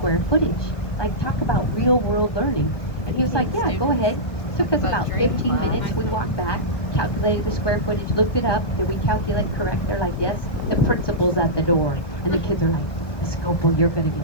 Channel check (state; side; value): late; right; 1.2 ms